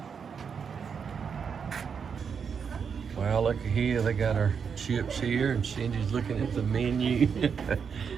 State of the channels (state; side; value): quieter; left; 6.5 dB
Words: Well, look here, they got our chips here, and Cindy's looking at the menu.